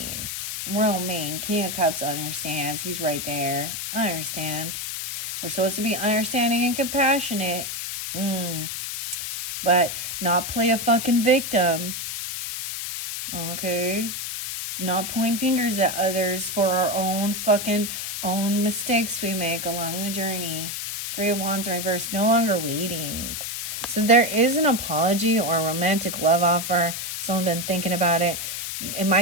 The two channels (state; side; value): noise; left; hiss, 5 dB below the sound